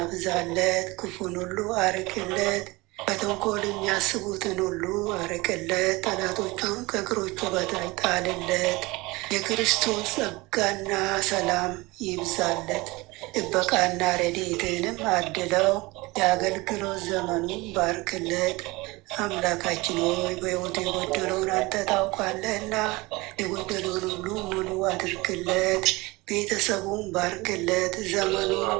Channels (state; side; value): quieter; left; 22.7 dB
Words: ክፉን ሁሉ አርቅለት፣ በተንኮል የሚያስቡትን ሁሉ አርቅለት፣ ጠላቶቹን ከእግሮቹ በታች ጣልለት። የክርስቶስ ጸጋና ሰላም ይብዛለት፣ ጥበቃና ረድኤትንም አድለው፣ የአገልግሎት ዘመኑን ባርክለት። አምላካችን ሆይ በሕይወቱ የጎደለውን አንተ ታውቃለህና የጎደለውን ሁሉ ሙሉ አድርግለት። ቤተሰቡን ባርክለት፣ ዘመኑን